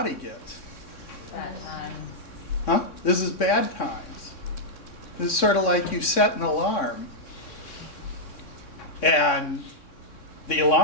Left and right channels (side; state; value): right; late; 3.6 ms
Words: gets? Bad times. Huh? This is bad times. This is sort of like you set an alarm, and the